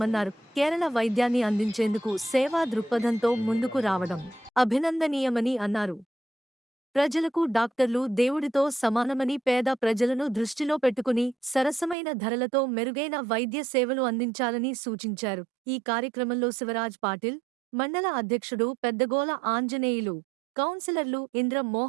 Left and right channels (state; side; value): drops out; left; at 12.0 s